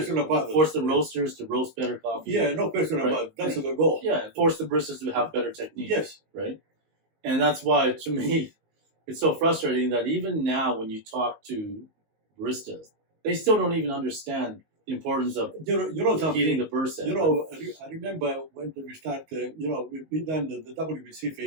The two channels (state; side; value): late; left; 19 ms